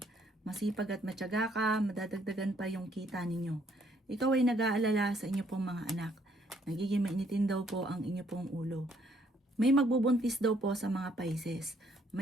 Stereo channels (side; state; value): both; normal; correlation 0.67